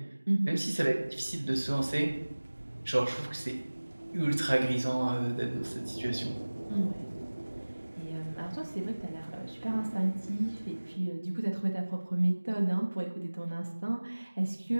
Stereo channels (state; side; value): inverted; both; correlation -1.00